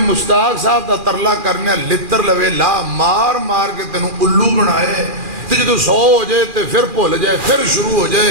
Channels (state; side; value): late; left; 2.4 ms